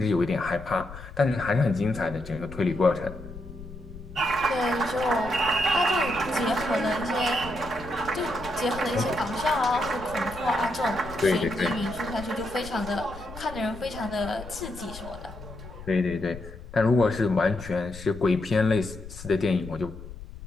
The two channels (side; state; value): left; noise; rumble, 14 dB below the sound